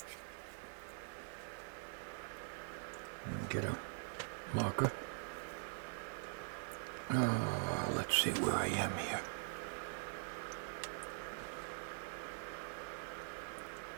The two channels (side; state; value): left; silent; digital silence